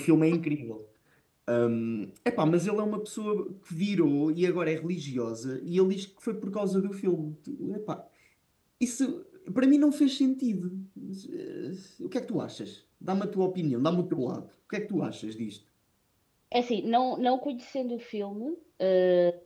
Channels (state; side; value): identical; both; correlation 1.00